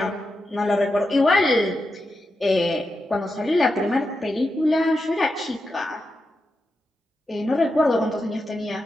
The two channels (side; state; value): both; normal; correlation 0.88